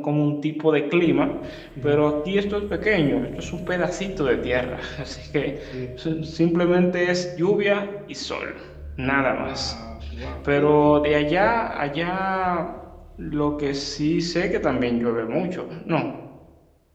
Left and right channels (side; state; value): both; identical; correlation 1.00